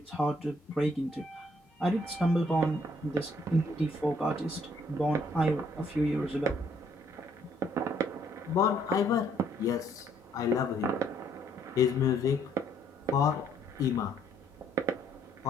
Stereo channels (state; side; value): normal; both; correlation 0.67